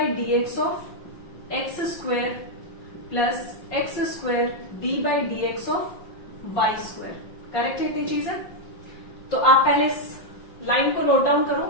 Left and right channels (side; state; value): right; late; 5.6 ms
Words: d x of x square plus x square d by d x of y square. Correct है इतनी चीजें? तो आप पहले इस लाइन को नोट डाउन